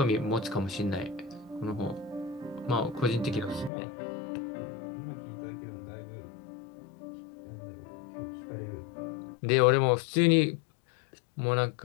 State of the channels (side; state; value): right; drops out; at 3.7 s